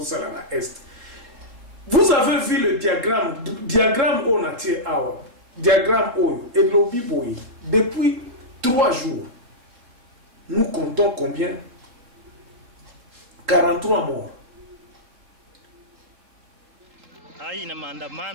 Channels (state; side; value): late; left; 3.8 ms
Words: vous avez vu le diagramme Onatie Awa, diagramme Oyo et lobby Boy. Depuis 3 jours, nous comptons combien? 43 morts. Hii ni